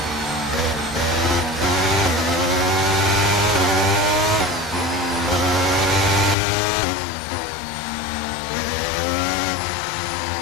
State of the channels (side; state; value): right; drops out; at 6.4 s